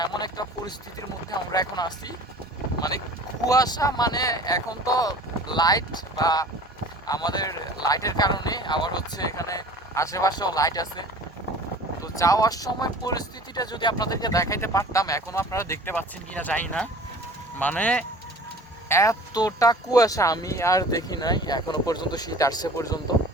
এমন একটা পরিস্থিতির মধ্যে আমরা এখন আছি। মানে কুয়াশা, মানে এখন তো লাইট বা আমাদের লাইটের কারণে আবার হচ্ছে এখানে আশেপাশেও লাইট আছে। তো যাওয়ার সময় পরিস্থিতিটা যদি আপনাদেরকে দেখাইতে পারতাম, এখনো আপনারা দেখতে পাচ্ছেন কিনা জানি না, মানে এতটা কুয়াশা আমি আর দেখি নাই এখনো পর্যন্ত, শীত আসছে পর্যন্ত।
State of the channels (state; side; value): normal; both; correlation 0.44